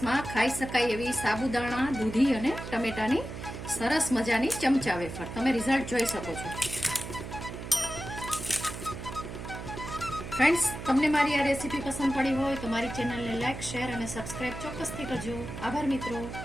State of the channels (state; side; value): noise; right; hum, 9 dB below the sound